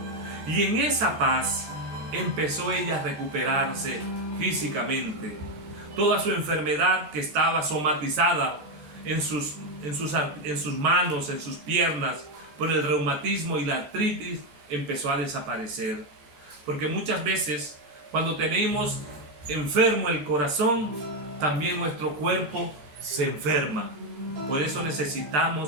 Y en esa paz empezó ella a recuperarse físicamente. Toda su enfermedad que estaba somatizada en sus manos, en sus piernas, por el reumatismo y la artritis, empezó a desaparecer. Porque muchas veces cuando tenemos enfermo el corazón, también nuestro cuerpo se enferma. Por eso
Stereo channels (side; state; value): left; late; 14 ms